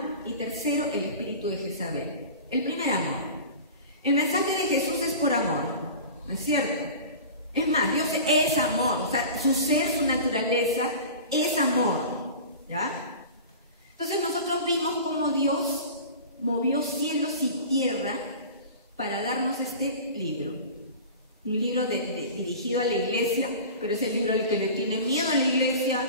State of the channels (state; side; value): inverted; both; correlation -0.36